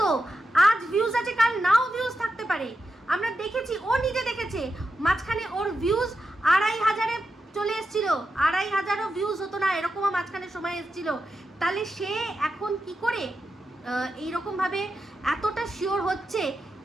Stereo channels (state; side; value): normal; both; correlation 0.88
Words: তো আজ ভিউজ আছে, কাল নাও ভিউজ থাকতে পারে। আমরা দেখেছি, ও নিজে দেখেছে, মাঝখানে ওর ভিউজ 2500-এ চলে এসেছিল, 2500ও ভিউজ হতো না, এরকমও মাঝখানে সময় এসেছিল। তাহলে সে এখন কি করে এইরকমভাবে এতটা শিওর হচ্ছে